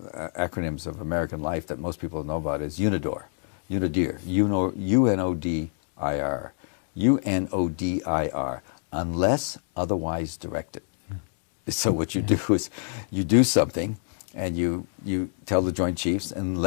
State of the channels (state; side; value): silent; right; digital silence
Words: of American life that most people know about is UNODIR. UNODIR. UNODIR. Unless otherwise directed. So what you do is you do something and you tell the Joint Chiefs